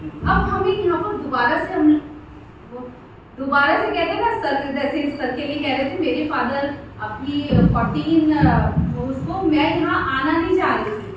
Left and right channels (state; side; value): identical; both; correlation 1.00